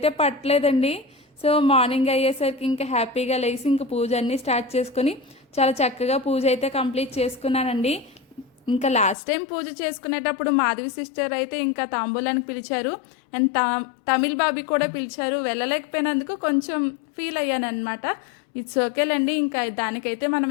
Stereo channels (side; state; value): right; drops out; at 9.2 s